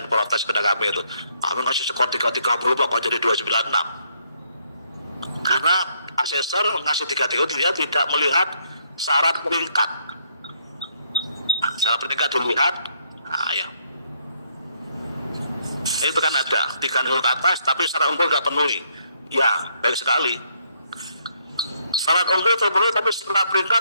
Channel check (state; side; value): inverted; both; correlation -0.70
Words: protes kepada kami itu kami ngasih skor 330 kok jadi 296 karena asesor ngasih 330 dia tidak melihat syarat peringkat. Syarat peringkat dilihat ya itu kan ada 3 ke atas tapi syarat unggul nggak penuhi ya baik sekali. Syarat unggul terpenuhi tapi setelah